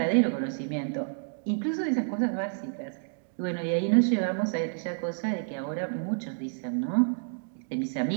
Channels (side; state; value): left; silent; digital silence